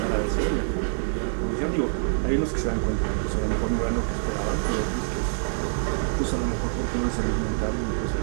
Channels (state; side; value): silent; left; digital silence